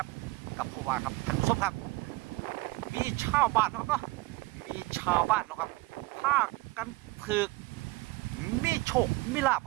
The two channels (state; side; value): quieter; left; 21.9 dB